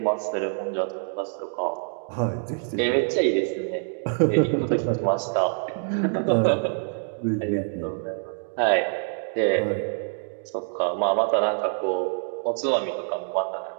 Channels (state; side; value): silent; left; digital silence